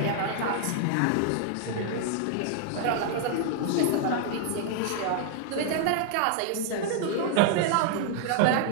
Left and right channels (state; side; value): different; both; correlation -0.01